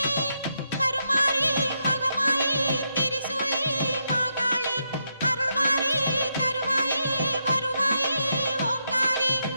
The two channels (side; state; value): both; inverted; correlation -0.81